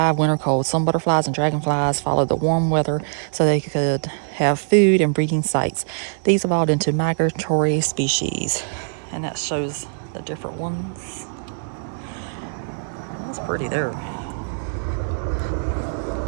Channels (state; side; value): silent; left; 64 dB below the other